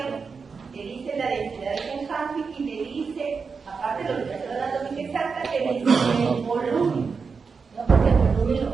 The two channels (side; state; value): left; quieter; 5.2 dB